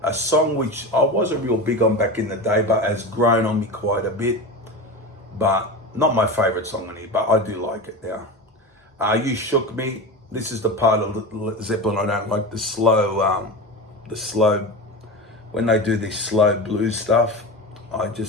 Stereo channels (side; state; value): both; normal; correlation 0.26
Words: A song which I wasn't real big on back in the day, but has grown on me quite a bit. But not my favorite song on here, but I do like it now. You Shook Me. This is the part of Zeppelin I don't like, the slow, when they do this slow blues stuff. I